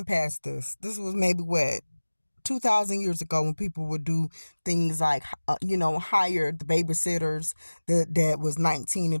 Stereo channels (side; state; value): both; inverted; correlation -1.00